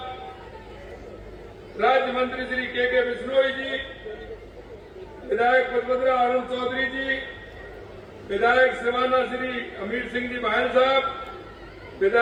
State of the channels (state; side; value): identical; both; correlation 1.00